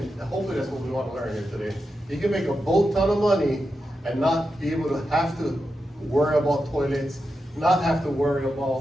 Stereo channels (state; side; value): normal; both; correlation 0.88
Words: what we want to learn here today. You can make a boat ton of money and not be able to have to worry about toilets, not have to worry